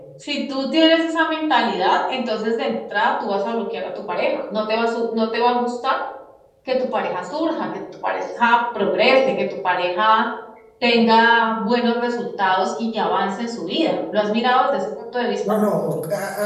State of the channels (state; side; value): identical; both; correlation 1.00